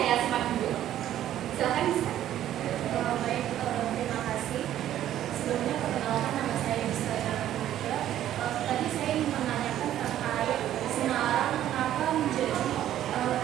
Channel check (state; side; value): quieter; left; 12.0 dB